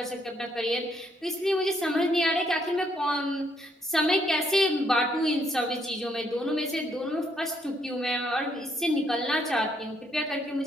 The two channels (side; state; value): both; normal; correlation 0.72